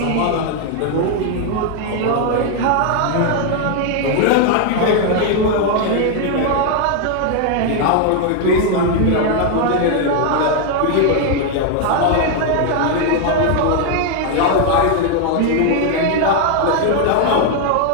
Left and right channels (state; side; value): different; both; correlation 0.01